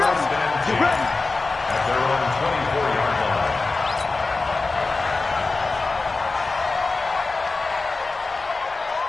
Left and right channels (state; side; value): quieter; right; 3.7 dB